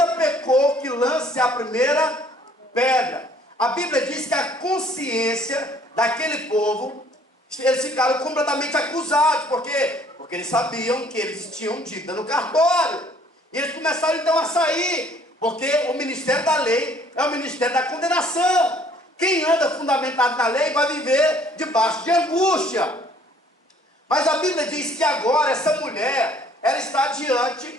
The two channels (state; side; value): normal; both; correlation 0.59